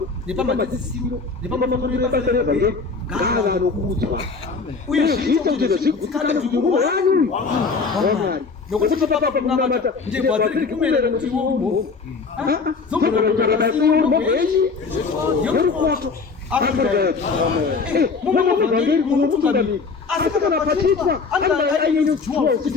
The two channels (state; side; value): quieter; right; 4.7 dB